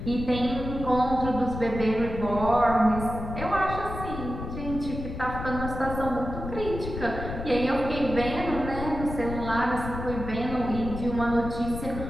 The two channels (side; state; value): left; noise; rumble, 7 dB below the sound